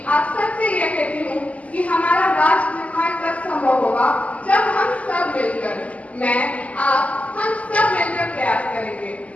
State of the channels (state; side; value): late; right; 0.069 ms